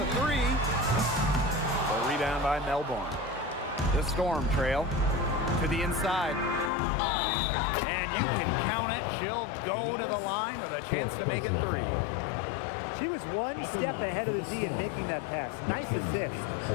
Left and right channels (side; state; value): right; drops out; at 6.7 s